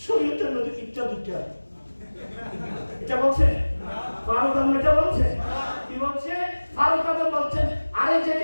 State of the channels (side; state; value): both; inverted; correlation -1.00